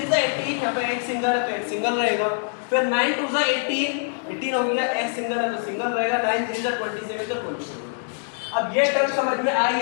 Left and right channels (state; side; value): silent; right; 63 dB below the other